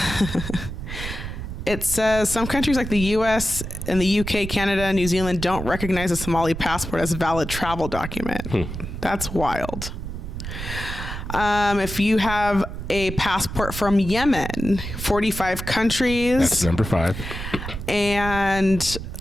It says some countries like the US and the UK, Canada, and New Zealand don't recognize a Somali passport as a valid travel document. That's wild. If you have a passport from Yemen, 45 countries. That's number 5. And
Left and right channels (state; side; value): noise; right; rumble, 7 dB below the sound